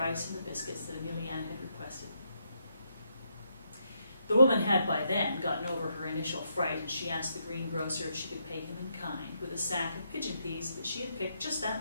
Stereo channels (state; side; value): inverted; both; correlation -0.78